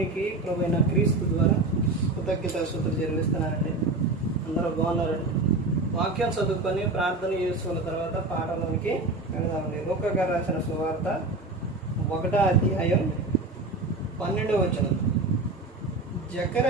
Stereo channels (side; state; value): left; quieter; 3.2 dB